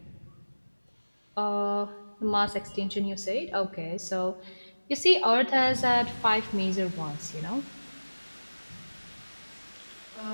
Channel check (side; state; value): both; inverted; correlation -1.00